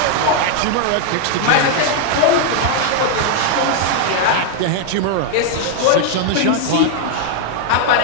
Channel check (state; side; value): different; both; correlation 0.00